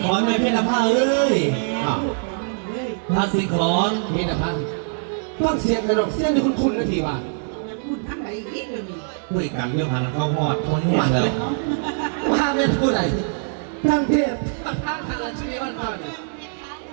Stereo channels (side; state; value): left; silent; digital silence